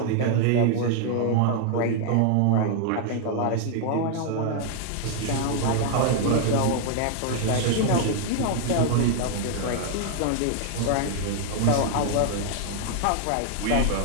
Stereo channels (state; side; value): different; both; correlation 0.00